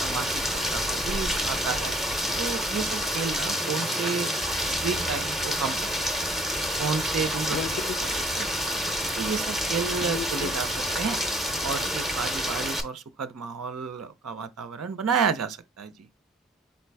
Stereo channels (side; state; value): both; normal; correlation 0.56